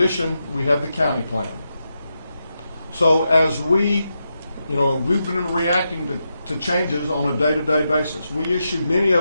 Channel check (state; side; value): inverted; both; correlation -0.86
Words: we have the county plan. So as we've been reacting to changes on a day-to-day basis. Many